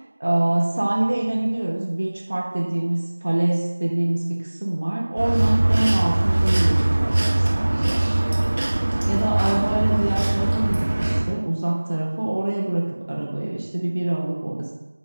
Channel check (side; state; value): both; inverted; correlation -1.00